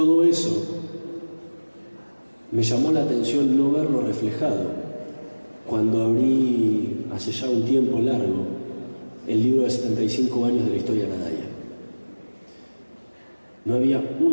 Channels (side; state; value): both; inverted; correlation -1.00